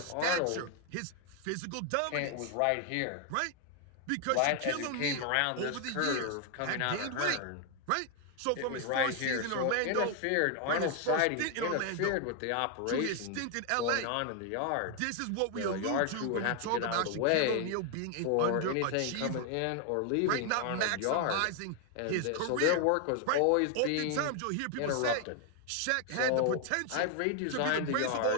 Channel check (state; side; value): different; both; correlation 0.00